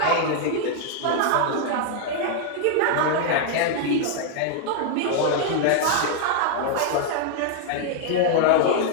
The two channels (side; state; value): both; different; correlation 0.00